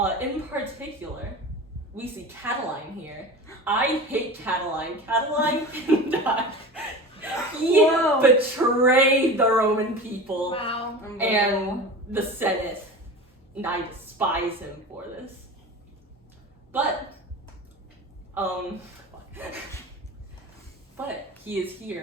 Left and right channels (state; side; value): normal; both; correlation 0.32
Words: In particular, we see Catiline here. I hate Catiline. Catiline can die. He betrayed the Roman people Wow. and the Senate. And I despise him for this. But he is